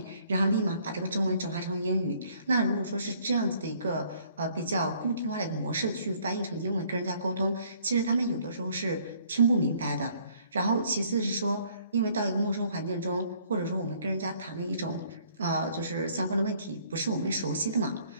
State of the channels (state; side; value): inverted; both; correlation -0.61